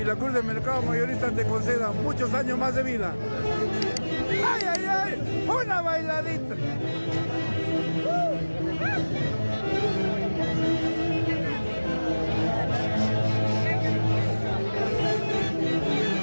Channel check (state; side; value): inverted; both; correlation -1.00